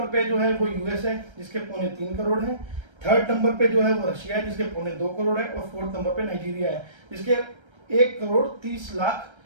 पे जो है वो यूएस है, जिसके 3.25 करोड़ है। थर्ड नंबर पे जो है वो रशिया है, जिसके 2.25 करोड़ है। और फोर्थ नंबर पे नाइजीरिया है, जिसके 1 करोड़ 30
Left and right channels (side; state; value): left; late; 1.3 ms